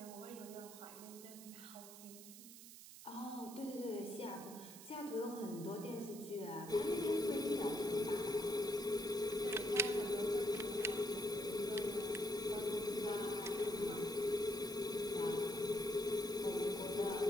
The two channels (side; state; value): right; noise; hiss, 15 dB below the sound